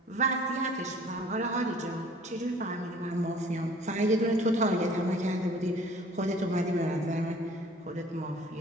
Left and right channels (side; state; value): both; normal; correlation 0.52